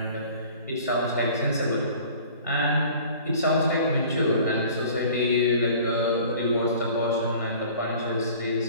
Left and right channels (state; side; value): inverted; both; correlation -0.47